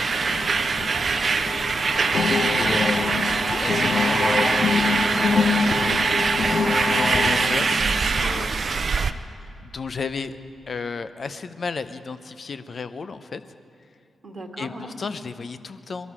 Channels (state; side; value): normal; both; correlation 0.85